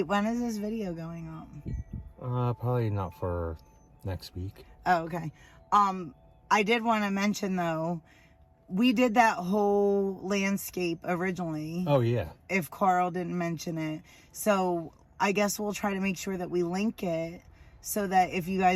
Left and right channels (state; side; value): identical; both; correlation 1.00